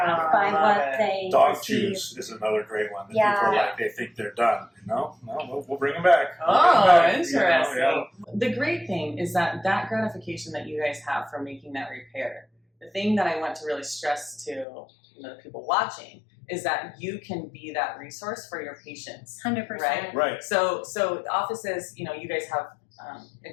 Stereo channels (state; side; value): drops out; right; at 14.7 s